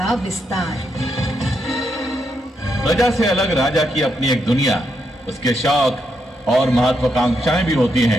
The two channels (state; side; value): normal; both; correlation 0.80